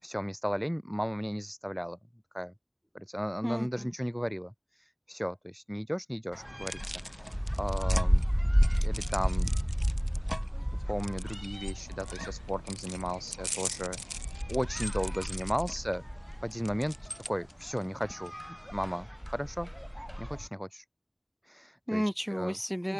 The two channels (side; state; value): both; identical; correlation 1.00